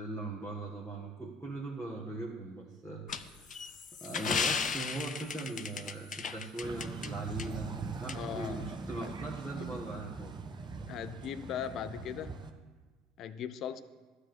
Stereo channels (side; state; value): both; normal; correlation 0.55